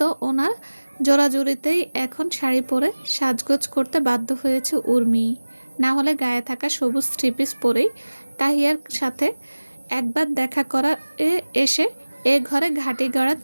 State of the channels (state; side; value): inverted; both; correlation -1.00